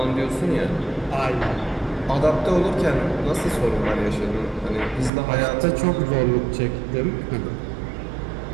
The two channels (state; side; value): drops out; left; at 5.1 s